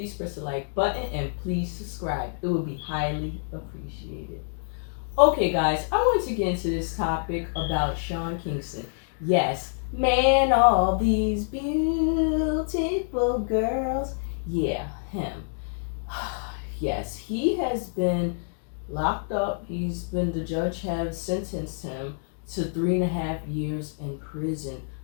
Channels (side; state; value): right; silent; digital silence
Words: press the like button and please subscribe. It would be highly appreciated. Okay guys, I want to get into this topic about Sean Kingston. Yes, man, all these beautiful girls. Yeah, him. Yes, he has been locked up. The judge has sentenced him to 3.5 years in prison